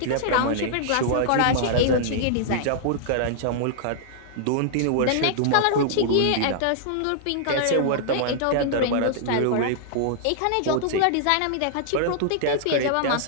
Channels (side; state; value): both; different; correlation -0.01